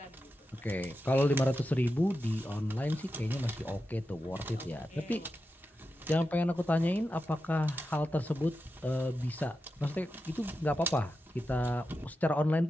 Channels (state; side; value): normal; both; correlation 0.90